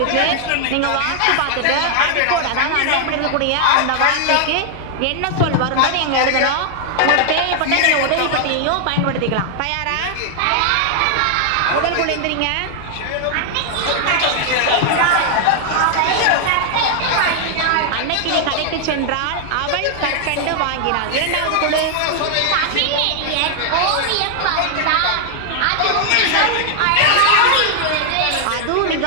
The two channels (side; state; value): both; different; correlation 0.00